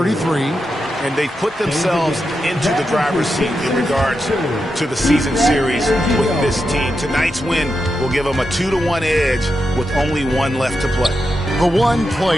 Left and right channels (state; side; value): normal; both; correlation 0.87